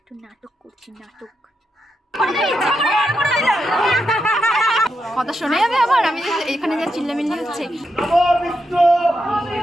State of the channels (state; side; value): normal; both; correlation 0.84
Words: নাটক করছি, নাটক। কথা শোনা যাবে আবার? আমি এখানে যা চিল্লামিল্লি হচ্ছে।